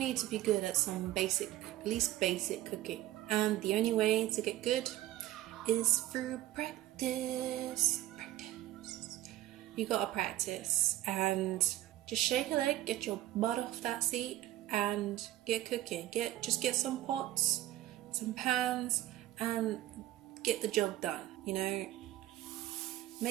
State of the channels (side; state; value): left; quieter; 14.8 dB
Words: to be good at some at least basic cooking. And the only way to get good is through practice. You gotta practice and just shake a leg, get your butt off that seat and get cooking. Just get some pots, some pans, and get the job done, you know.